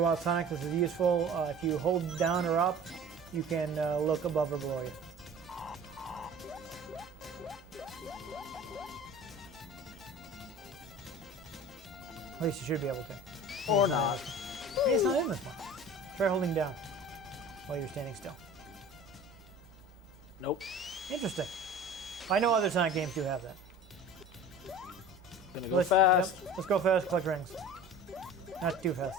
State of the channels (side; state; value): both; normal; correlation 0.41